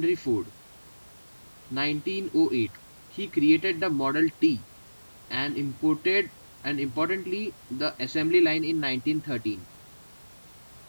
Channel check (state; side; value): inverted; both; correlation -1.00